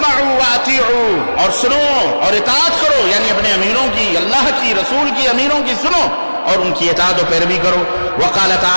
واطیعوا, اور سنو اور اطاعت کرو, یعنی اپنے امیروں کی, اللہ کی, رسول کی امیروں کی سنو اور ان کی اطاعت و پیروی کرو. وقال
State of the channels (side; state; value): both; inverted; correlation -1.00